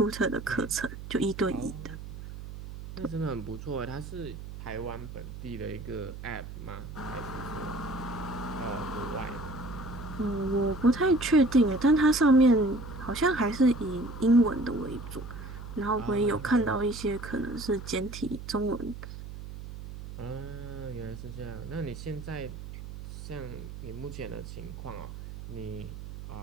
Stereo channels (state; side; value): noise; right; hum, 11 dB below the sound